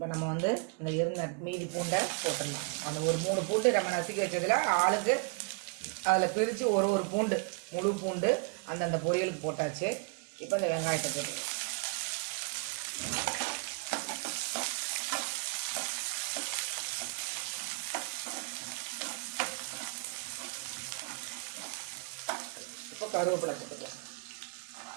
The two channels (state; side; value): quieter; left; 31.9 dB